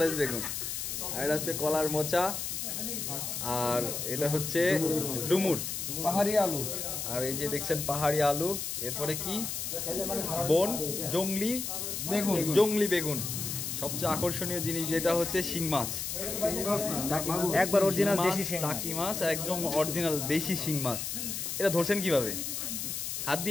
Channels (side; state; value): left; noise; hiss, 4 dB below the sound